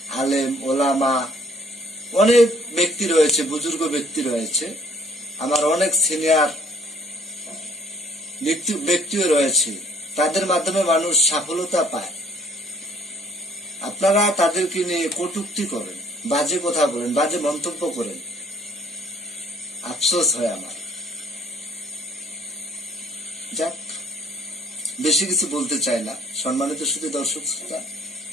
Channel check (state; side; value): normal; both; correlation 0.59